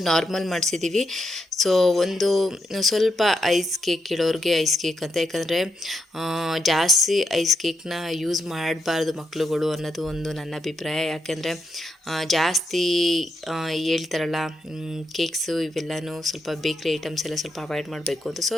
ನಾರ್ಮಲ್ ಮಾಡಿಸಿದ್ದೀವಿ. ಸೊ ಒಂದು ಸ್ವಲ್ಪ ಐಸ್ ಕೇಕ್ ಇಡೋರಿಗೆ ಐಸ್ ಕೇಕ್ ಅಂತ, ಯಾಕಂದರೆ ಜಾಸ್ತಿ ಐಸ್ ಕೇಕ್ನ ಯೂಸ್ ಮಾಡಬಾರ್ದು ಮಕ್ಕಳುಗಳು ಅನ್ನೋದು ಒಂದು ನನ್ನ ಅಭಿಪ್ರಾಯ. ಯಾಕೆಂದರೆ ಜಾಸ್ತಿ ಹೇಳ್ತಾರಲ್ಲ ಕೇಕ್ಸು ಇವೆಲ್ಲನೂ ಸ್ವಲ್ಪ ಬೇಕ್ರಿ ಐಟಮ್ಸ್ ಎಲ್ಲ ಸ್ವಲ್ಪ ಅವಾಯ್ಡ್ ಮಾಡಬೇಕು ಅಂತ. ಸೊ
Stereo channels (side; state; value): both; normal; correlation 0.82